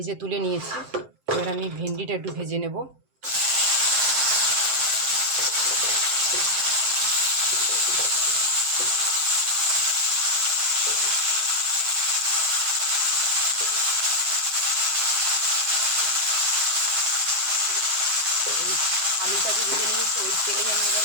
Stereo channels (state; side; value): late; left; 7.6 ms